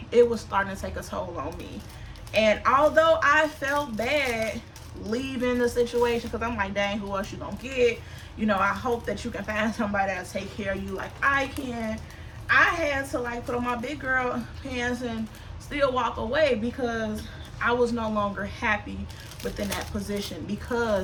it was starting to take a toll on me. And although I felt bad leaving the situation, because I'm like, dang, who else you gonna get? You know, I hope that you can find somebody that'll take care of you like I can. I had to like put on my big girl pants and still walk away, because I was no longer happy within that position,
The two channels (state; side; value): identical; both; correlation 1.00